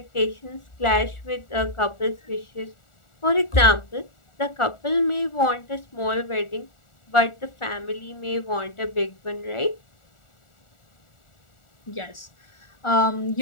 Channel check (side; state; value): right; late; 1.4 ms